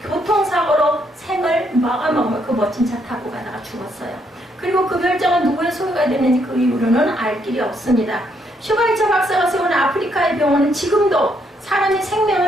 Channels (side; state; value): both; normal; correlation 0.73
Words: 교통사고로 생을 마감하고 그 멋진 차 타고 가다가 죽었어요. 그리고 그 별장은 누구의 소유가 됐는지 그 이후로는 알 길이 없습니다. 슈바이처 박사가 세운 아프리카의 병원은 지금도 사람의